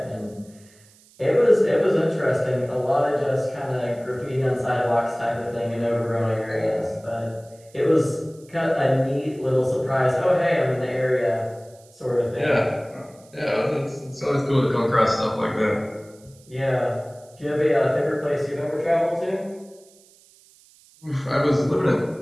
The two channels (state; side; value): noise; right; hiss, 28 dB below the sound